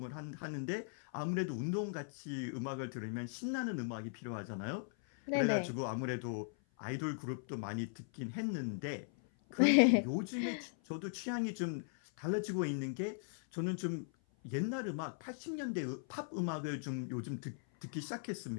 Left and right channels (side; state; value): right; silent; 52 dB below the other